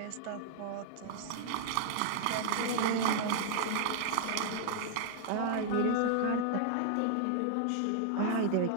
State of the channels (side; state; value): both; different; correlation -0.01